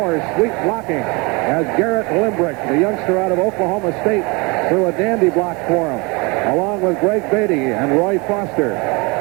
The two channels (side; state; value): left; quieter; 27.8 dB